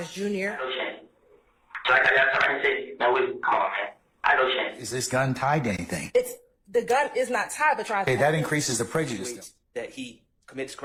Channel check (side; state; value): both; identical; correlation 1.00